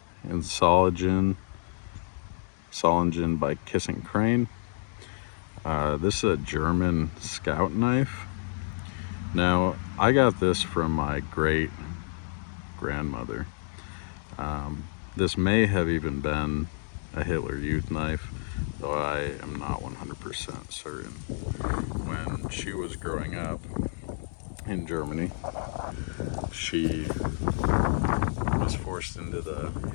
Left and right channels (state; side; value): silent; right; digital silence